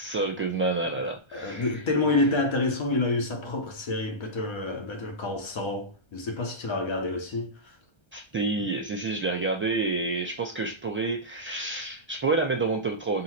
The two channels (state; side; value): late; right; 1.3 ms